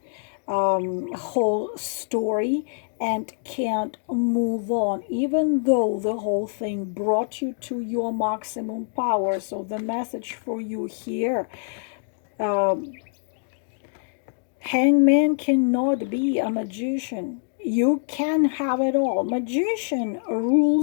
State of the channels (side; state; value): right; silent; digital silence